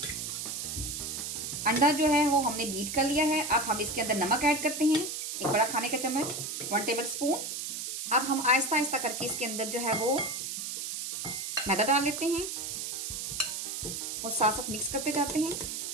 अंडा जो है वो हमने बीट कर लिया है। अब हम इसके अंदर नमक ऐड करते हैं, एक बड़ा खाने का चम्मच, 1 टेबल स्पून। अब हम आहिस्ता आहिस्ता करके इसके अंदर जो है वो मैदा डाल लेते हैं और साथ साथ मिक्स करते जाते हैं।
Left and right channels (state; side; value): noise; right; hiss, 4 dB below the sound